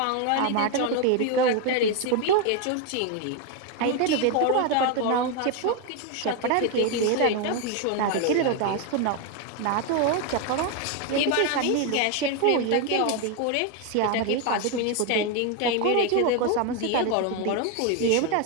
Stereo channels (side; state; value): both; different; correlation 0.02